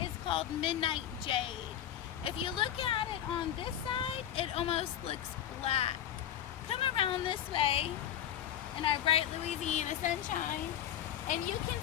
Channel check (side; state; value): right; quieter; 10.7 dB